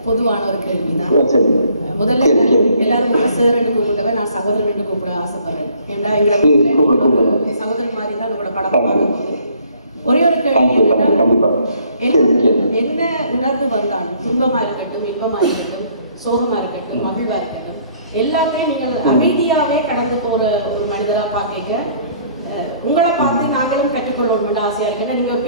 பொதுவான ஒரு கேள்வி தான். முதல்ல எல்லாரும் சார் கூப்பிட்டவன் நான் சகோதரன் கூப்பிட ஆசைப்படுறேன். ஏன்னா எங்களை சகோதரன் மாதிரி தான் உங்களோட படம் பார்க்கும்போது ஒரே ஒரு கேள்வி என்ன உணர்வு வந்தாலும், துன்பமா இருக்கட்டும், இன்பமா இருக்கட்டும், சோகமா இருக்கட்டும், மகிழ்வா இருக்கட்டும், எல்லாமே நீங்கள் அமைதியாவே கடந்து போற ஒரு மனிதரா பாக்க உங்களை பார்த்து நாங்களும் கற்றுக்கொள்ளணும் ஆசையா இருக்கு. ஏன்னா நீங்க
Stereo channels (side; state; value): both; inverted; correlation -0.61